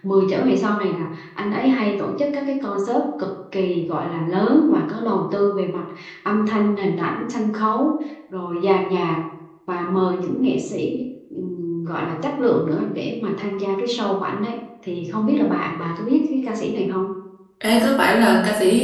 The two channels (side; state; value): both; identical; correlation 1.00